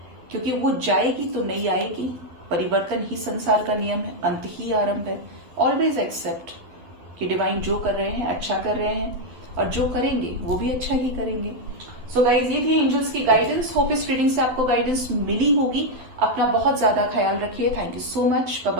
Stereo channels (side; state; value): left; late; 12 ms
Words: क्योंकि वो जाएगी तो नहीं आएगी। परिवर्तन ही संसार का नियम है, अंत ही आरंभ है। ऑलवेज एक्सेप्ट कि डिवाइन जो कर रहे हैं अच्छा कर रहे हैं, और जो करेंगे वो भी अच्छा ही करेंगे। सो गाइज, ये थी एंजल्स की गाइडेंस। होप इस रीडिंग से आपको गाइडेंस मिली होगी। अपना बहुत ज्यादा ख्याल रखिए। Thank you so much. Bye